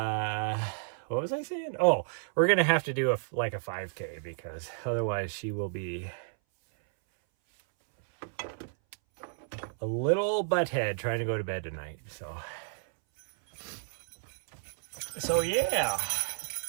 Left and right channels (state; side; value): silent; left; 57 dB below the other